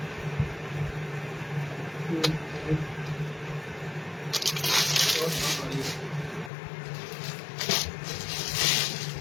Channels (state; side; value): drops out; right; at 6.5 s